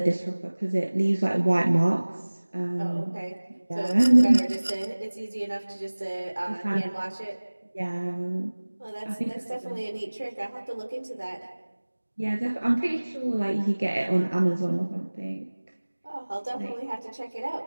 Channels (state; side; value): inverted; both; correlation -1.00